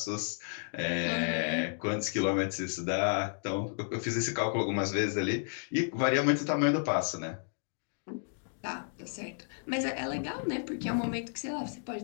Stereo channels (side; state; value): right; silent; digital silence